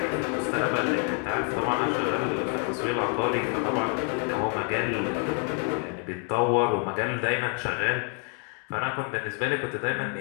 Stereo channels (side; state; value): right; quieter; 36.4 dB